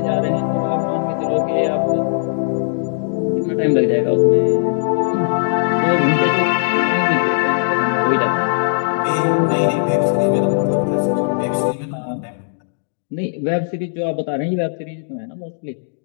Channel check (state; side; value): silent; right; digital silence